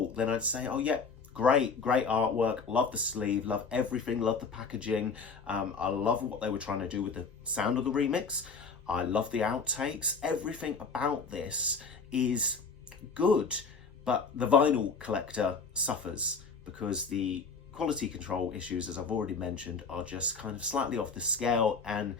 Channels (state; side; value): quieter; right; 4.8 dB